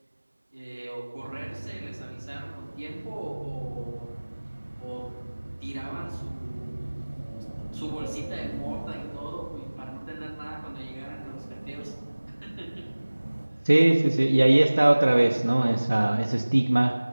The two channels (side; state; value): both; inverted; correlation -1.00